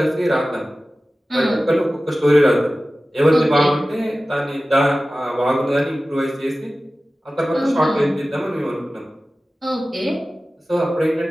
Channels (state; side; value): normal; both; correlation 0.96